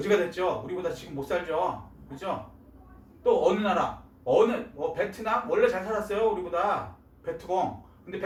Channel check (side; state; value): both; identical; correlation 1.00